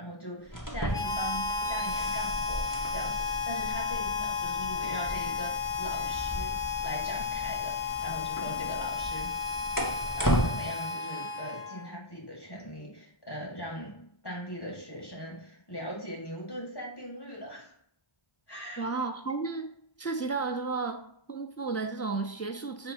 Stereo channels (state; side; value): late; right; 1.4 ms